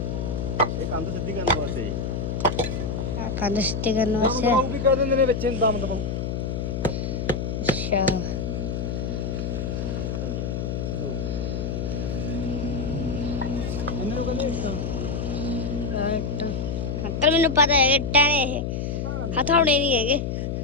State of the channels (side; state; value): left; noise; hum, 2 dB below the sound